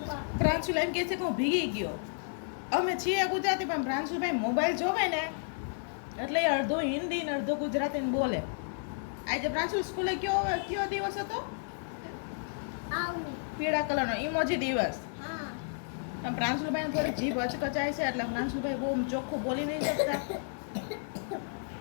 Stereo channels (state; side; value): silent; right; digital silence